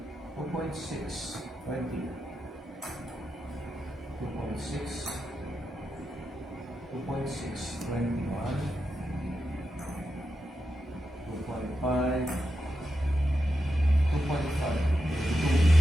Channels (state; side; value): normal; both; correlation 0.88